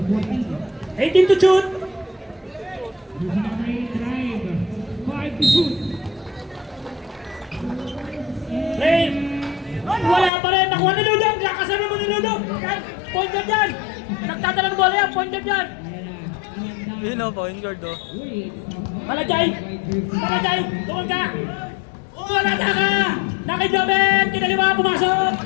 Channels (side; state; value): right; drops out; at 10.3 s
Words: 18 to shoot! Rain! Wala pa rin! Nakuha ni Ludo! Kasama mo ni Ludo! Point guard yan! Nagtadala ng bola yan! Point guard yan! Yun o, point guard o. Balajay! Balajay! Tukol ka! Wala na ka! Nakidobet! Kinaliwa! Pumasok!